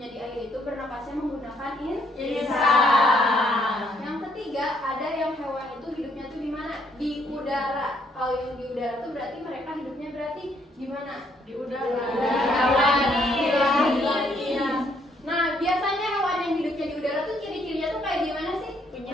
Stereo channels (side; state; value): both; normal; correlation 0.69